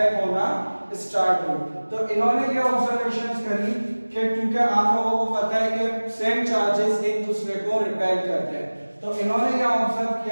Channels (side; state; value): both; inverted; correlation -1.00